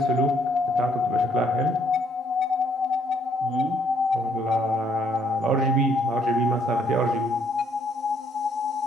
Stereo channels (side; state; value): both; normal; correlation 0.68